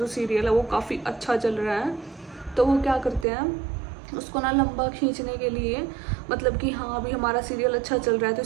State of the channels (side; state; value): left; drops out; at 3.2 s